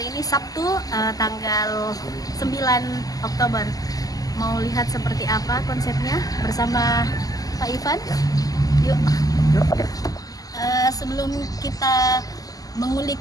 ini Sabtu tanggal 9 Oktober. Mau lihat seperti apa konsepnya bersama Pak Ivan? Yuk. Sebelum kita mengulik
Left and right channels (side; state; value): right; late; 0.17 ms